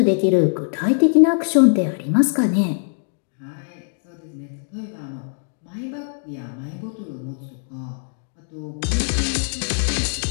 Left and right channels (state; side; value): silent; right; digital silence